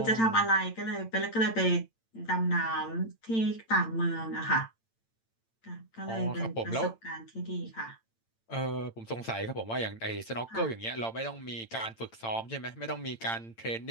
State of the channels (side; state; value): right; late; 8.9 ms